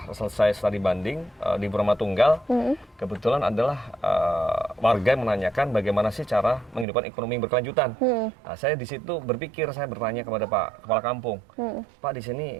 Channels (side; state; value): left; drops out; at 6.9 s